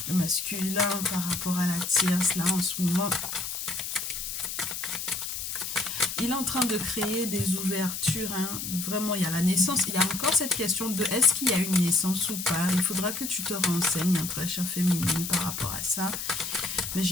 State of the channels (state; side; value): noise; left; hiss, 5 dB below the sound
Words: Le masculin par rapport à la tierce, là en ce moment, il est en train de créer des ouvertures, hein. Vraiment, il y a la naissance, il y a encore cette question de est-ce qu'il y a une naissance ou pas. Il faudra que tu te renseignes, hein, très chère féminine, par rapport à ça. Mais